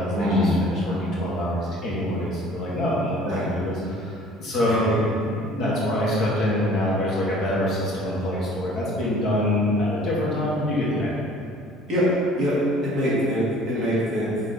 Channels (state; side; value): normal; both; correlation 0.51